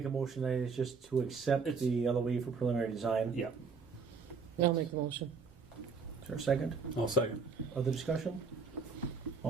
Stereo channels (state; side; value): quieter; left; 5.1 dB